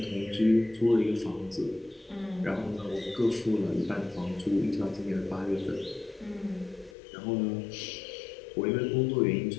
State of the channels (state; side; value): drops out; right; at 7.0 s